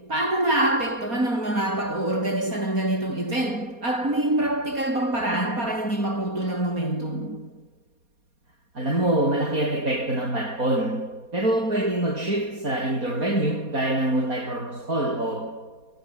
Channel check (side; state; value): left; late; 4.2 ms